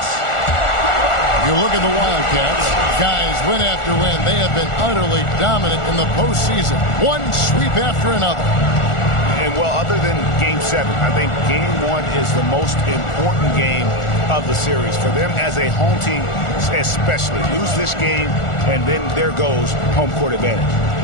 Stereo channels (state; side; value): late; right; 1.4 ms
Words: You look at the Wildcats, guys, win after win. They have been utterly dominant in the postseason. One sweep after another. And, well, other than Game 7, I think Game 1 is the most important game of the series. For them as a home team, especially. Lose this game, and then there goes home court advantage.